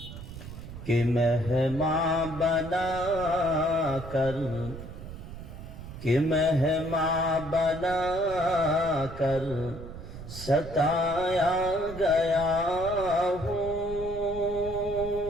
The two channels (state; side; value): noise; right; rumble, 12 dB below the sound